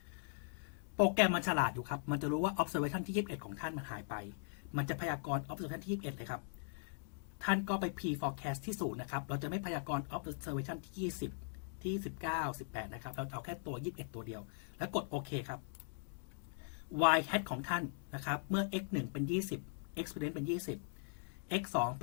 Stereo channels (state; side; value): silent; right; digital silence